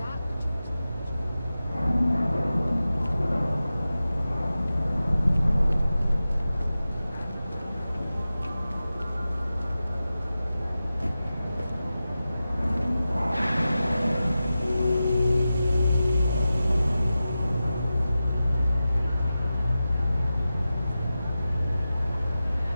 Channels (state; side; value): inverted; both; correlation -0.94